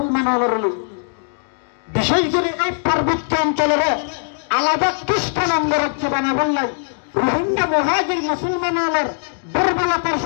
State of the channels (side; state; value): right; silent; digital silence